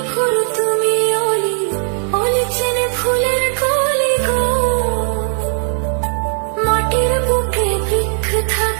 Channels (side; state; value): left; silent; 64 dB below the other